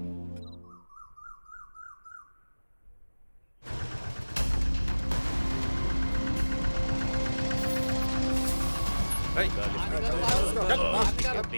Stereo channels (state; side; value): inverted; both; correlation -1.00